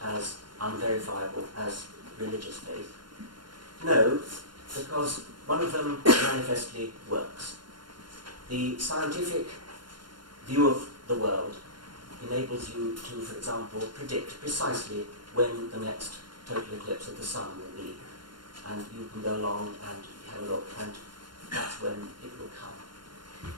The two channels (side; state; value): left; late; 0.72 ms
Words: as unverifiable as religious faith? No, because one of them manifestly works. The scientific view of the world enables you to, for example, predict precisely when the next total eclipse of the sun will be. And you can go along and have a look, and that's when it will come.